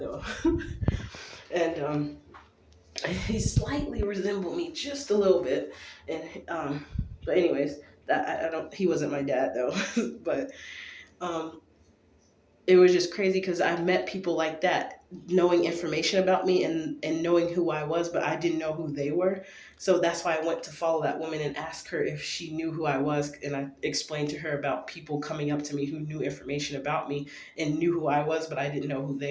And he slightly resembled me just a little bit. And but anyways, that I don't. He wasn't my dad though. But um, it was just crazy because I met people like that, knowing information about me and knowing who I was, but I didn't know who they were. So that's why I went to follow that woman and ask her if she knew who I was. And I explained to her about people coming up to me who knew information about me and knew who I was, but I didn't know who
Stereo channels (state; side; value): identical; both; correlation 1.00